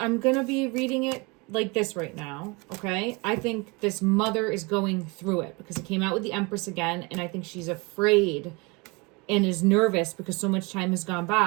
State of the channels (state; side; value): quieter; left; 27.1 dB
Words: gonna be reading it like this right now. Okay. I think this mother is going through it because it came out with the Empress again, and I think she's afraid and is nervous because so much time has gone